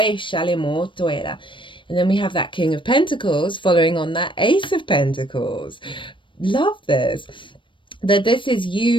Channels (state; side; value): late; right; 0.24 ms